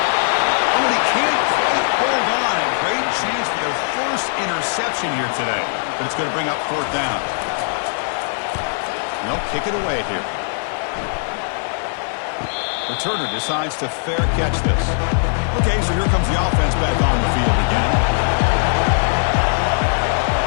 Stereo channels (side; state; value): right; silent; digital silence